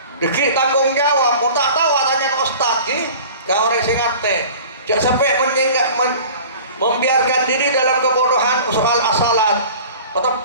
Dikit tanggung jawab, mutak tahu tanya ke ustaz ki, ke orang sing ngerti. Jangan sampai membiarkan diri dalam kebodohan soal asalat.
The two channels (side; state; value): both; inverted; correlation -0.42